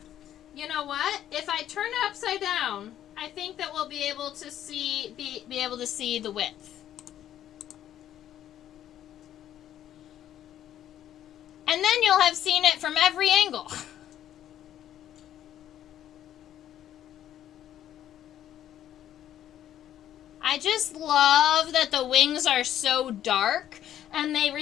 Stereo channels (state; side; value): quieter; right; 11.3 dB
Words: You know what? If I turn it upside down, I think that we'll be able to see be able to see the width. And then you'll have seen it from every angle. I just love that the wings are so dark and they